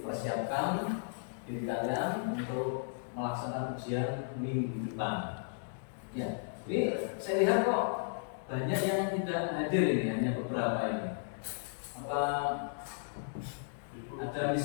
diri kalian untuk melaksanakan ujian minggu depan. Ya, ini saya lihat kok banyak yang tidak hadir ini, hanya beberapa ini. Apa ada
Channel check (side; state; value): right; silent; digital silence